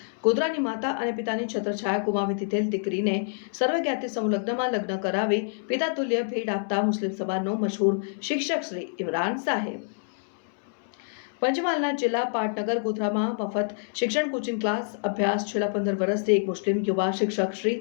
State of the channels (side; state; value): right; silent; 60 dB below the other